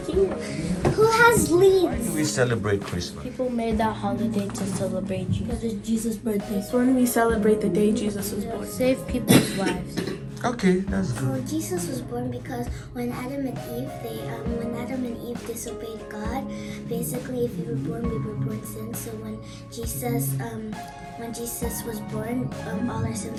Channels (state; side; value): identical; both; correlation 1.00